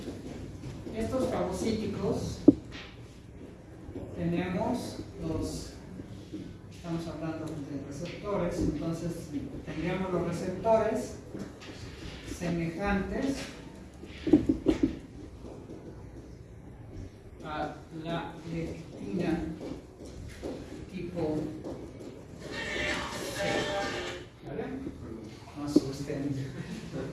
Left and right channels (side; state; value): both; identical; correlation 1.00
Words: Estos fagocíticos tenemos los, estamos hablando de receptores, entonces tendríamos los receptores semejantes a la lectina tipo C. ¿Vale? No asusten.